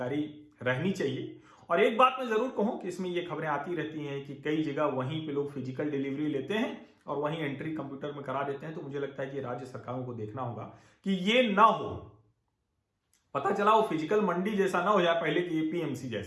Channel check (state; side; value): identical; both; correlation 1.00